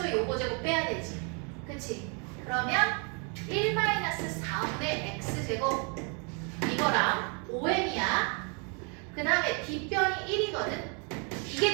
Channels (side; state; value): left; quieter; 36.2 dB